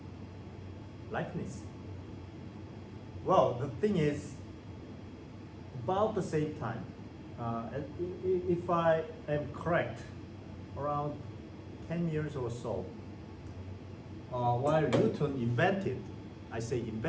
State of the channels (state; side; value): identical; both; correlation 1.00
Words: Leibniz. Well, the thing is, about the same time, if I am correct, around 10 years or so, while Newton invented, I say